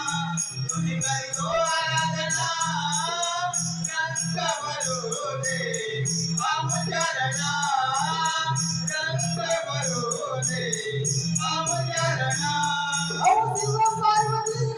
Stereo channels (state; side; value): identical; both; correlation 1.00